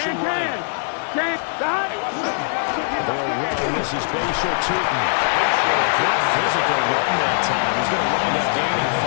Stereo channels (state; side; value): silent; right; digital silence